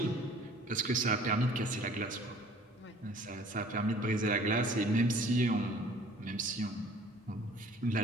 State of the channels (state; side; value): normal; both; correlation 0.52